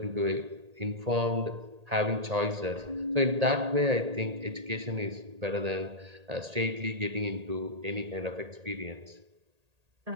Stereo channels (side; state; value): left; late; 1.8 ms